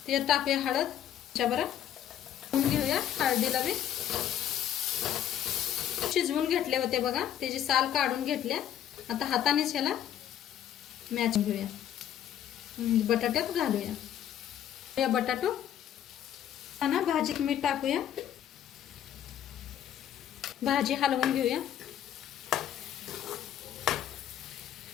त्याच्यात टाकूया हळद, त्याच्याबरोबर घेऊया हळदीला बी. शिजवून घेतले होते बघा, त्याची साल काढून घेतल्या. आता हातानेच ह्याला मॅच घेऊया. बटाट्यात घालूया. या बटाटो ना भाजीत मीठ टाकूया. भाजी हलवून घेऊया.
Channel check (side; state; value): right; quieter; 10.5 dB